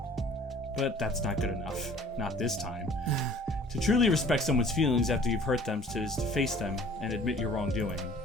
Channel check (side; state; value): both; normal; correlation 0.51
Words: But that's not good enough. Not this time. To truly respect someone's feelings after you've hurt them is to face them and admit your wrongdoing.